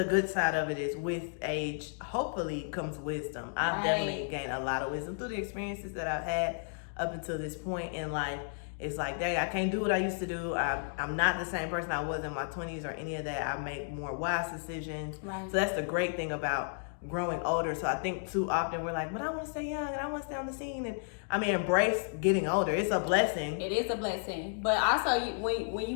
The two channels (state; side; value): silent; right; digital silence